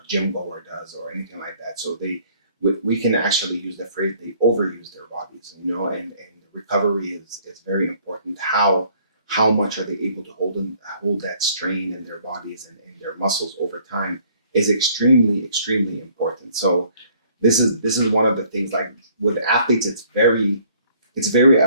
gym goer does or anything like that. So we can actually use the phrase they overuse their bodies, and recovery is very important. How much are they able to hold that strain in their bodies and their muscles over time is extremely, extremely important. So this is one of the things, like with athletes, it's a very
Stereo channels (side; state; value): both; inverted; correlation -0.60